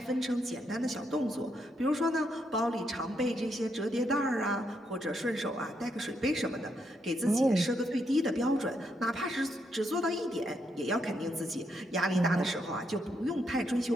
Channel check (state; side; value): normal; both; correlation 0.78